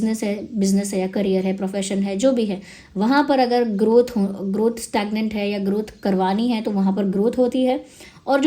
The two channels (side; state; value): both; identical; correlation 1.00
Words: है या करियर है, प्रोफेशन है, जो भी है, वहाँ पर अगर ग्रोथ स्टैग्नेंट है या ग्रोथ करवानी है तो वहाँ पर ग्रोथ होती है। और